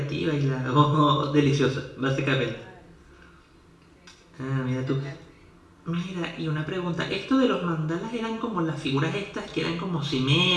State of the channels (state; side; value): identical; both; correlation 1.00